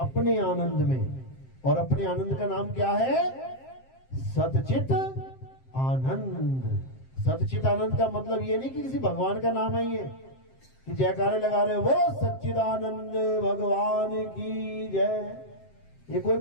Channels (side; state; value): right; late; 7.6 ms